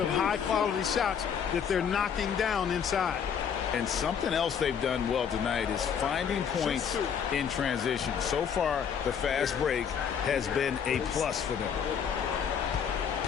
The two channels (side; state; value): right; quieter; 7.5 dB